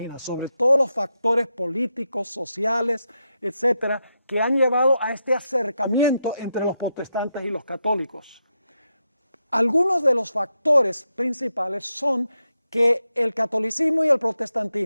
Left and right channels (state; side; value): inverted; both; correlation -0.85